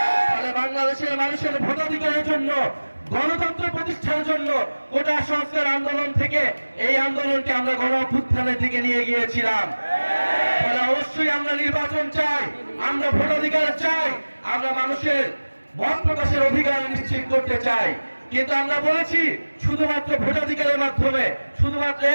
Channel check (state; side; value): inverted; both; correlation -1.00